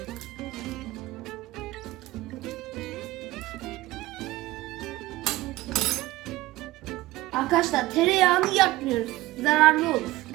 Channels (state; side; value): quieter; left; 18.1 dB